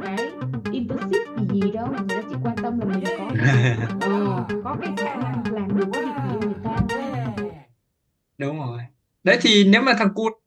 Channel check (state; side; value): identical; both; correlation 1.00